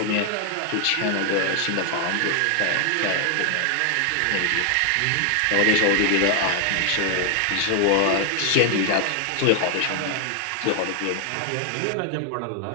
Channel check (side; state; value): both; different; correlation 0.00